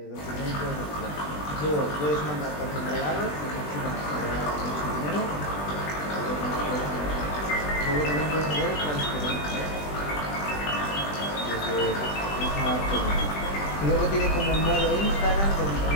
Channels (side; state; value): right; late; 20 ms